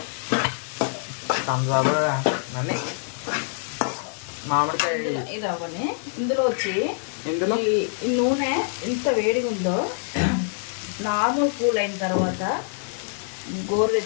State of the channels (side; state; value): right; silent; digital silence